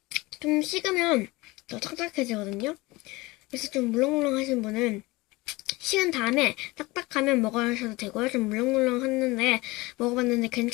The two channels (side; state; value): right; quieter; 21.9 dB